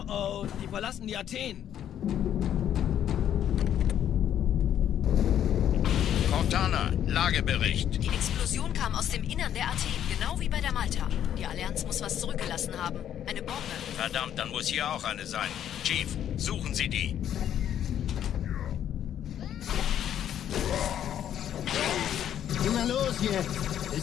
oh, die verlassen die Athen. Cortana, Lagebericht. Die Explosion kam aus dem Innern der Athen, genau wie bei der Malta. Die Allianz muss was zurückgelassen haben. Eine Bombe. Verdammt, dann muss hier auch eine sein. Chief, suchen Sie die. Na los jetzt!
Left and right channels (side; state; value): right; quieter; 10.3 dB